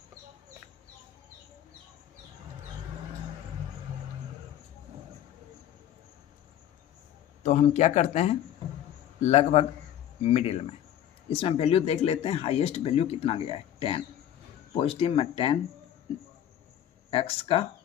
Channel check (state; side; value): quieter; right; 11.1 dB